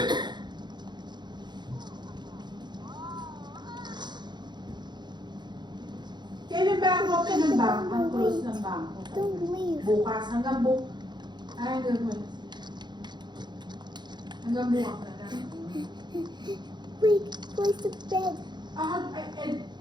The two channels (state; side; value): late; left; 0.21 ms